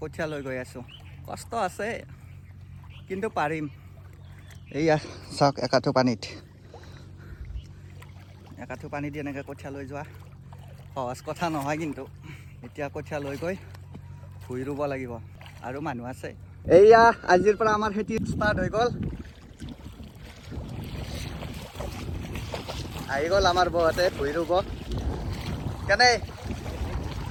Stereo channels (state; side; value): identical; both; correlation 1.00